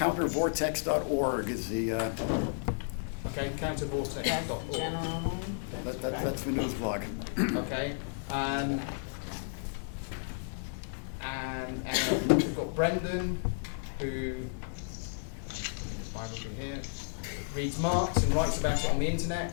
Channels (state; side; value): silent; right; digital silence